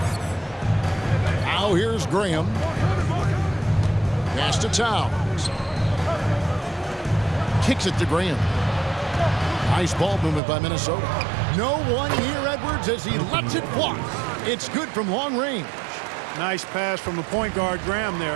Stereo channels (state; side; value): drops out; left; at 10.4 s